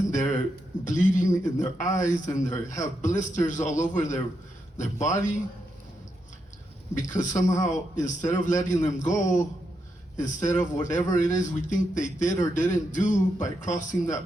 they're bleeding in their eyes, and they have blisters all over their body, because somehow, instead of letting them go, instead of whatever it is we think they did or didn't do by crossing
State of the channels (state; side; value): normal; both; correlation 0.82